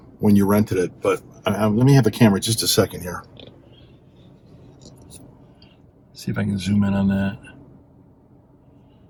when you rented it, but let me have the camera just a second here. See if I can zoom in on that.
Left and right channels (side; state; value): both; identical; correlation 1.00